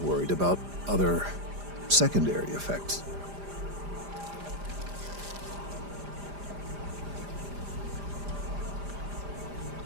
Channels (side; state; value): left; late; 5.0 ms